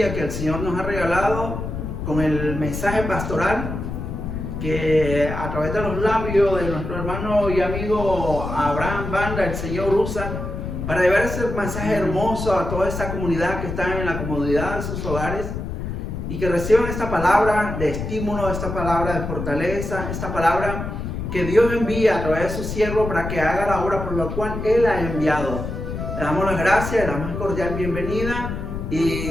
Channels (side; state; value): left; noise; rumble, 5 dB below the sound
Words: que el Señor nos ha regalado con el mensaje pastoral que a través de los labios de nuestro hermano y amigo Abraham Banda, el Señor usa para llevar ese mensaje hermoso a toda esta comunidad que está en la comodidad de sus hogares y que reciban esta palabra de estímulo, esta palabra de fortaleza, esta palabra que Dios envía a través de su siervo para que haga la obra por la cual Él ha enviado. Le damos las gracias, la más cordial bienvenida